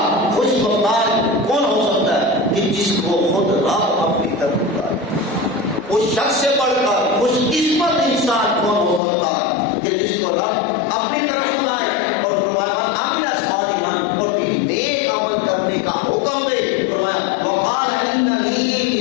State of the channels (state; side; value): drops out; right; at 9.0 s